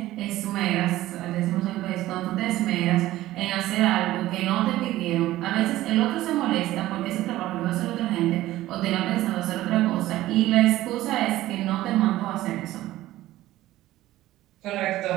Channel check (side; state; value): left; quieter; 15.6 dB